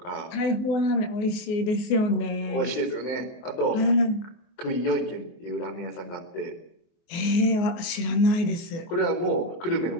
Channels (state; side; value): late; right; 24 ms